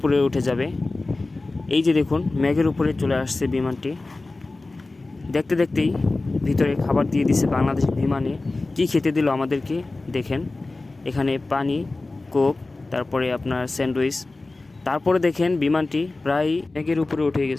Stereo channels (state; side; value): quieter; right; 3.2 dB